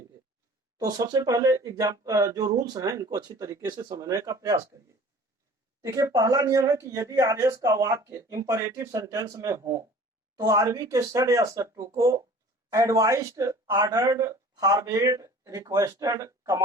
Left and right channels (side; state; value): both; normal; correlation 0.46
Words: तो सबसे पहले जो रूल्स हैं इनको अच्छी तरीके से समझने का प्रयास करिए। देखिए, पहला नियम है कि यदि आरएस का वाक्य इंपरेटिव सेंटेंस में हो तो आरबी के सड या सट्टू को advised, ordered, forwarded, requested,